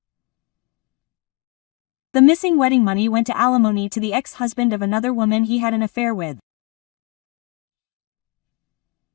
The missing wedding money went to alimony to the ex-husband of another woman he had an affair with.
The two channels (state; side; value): quieter; right; 26.6 dB